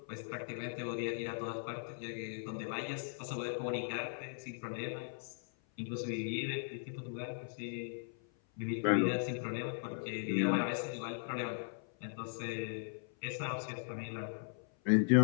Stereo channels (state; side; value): silent; right; 52 dB below the other